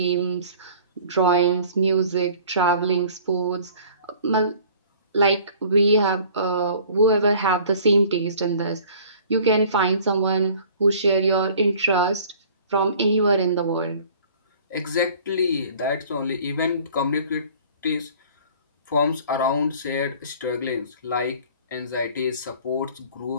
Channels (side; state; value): both; inverted; correlation -0.50